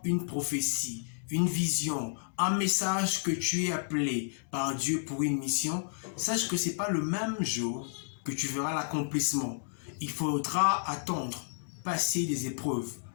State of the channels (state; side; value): silent; right; digital silence